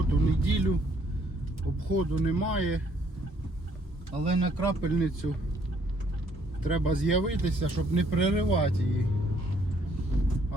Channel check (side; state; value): both; normal; correlation 0.66